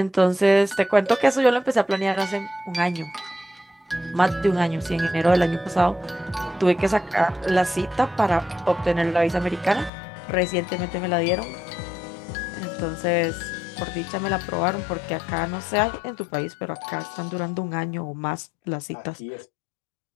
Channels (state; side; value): drops out; right; at 9.9 s